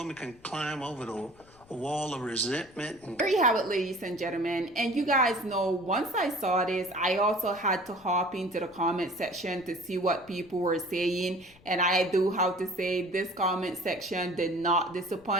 can climb over the wall of resentment and There you have it, ladies and gentlemen. And you guys know, once I saw this, I also had to hop into the comment section to see what people were saying. And I do have to say, this comment section did not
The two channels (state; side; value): noise; left; rumble, 27 dB below the sound